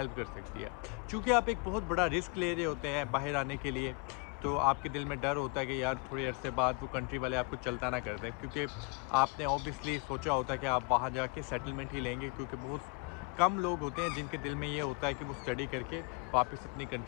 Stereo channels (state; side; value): quieter; right; 30.9 dB